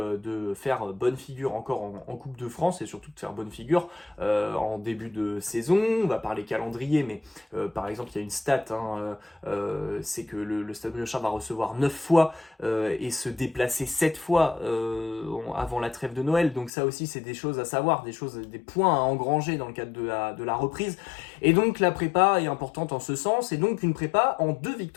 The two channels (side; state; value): right; drops out; at 16.7 s